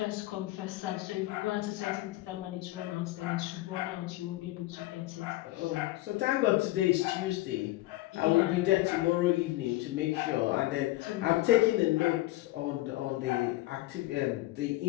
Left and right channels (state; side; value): quieter; right; 17.9 dB